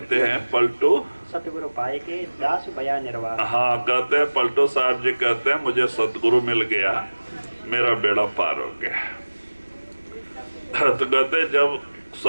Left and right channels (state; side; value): inverted; both; correlation -1.00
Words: हैं, पलटू सतगुरु पाएगे, दास भया निर्वार। हाँ, कहते हैं पलटू साहब जी कहते हैं मुझे सतगुरु मिल गया, मेरा बेड़ा पार हो गया। तो कहते जब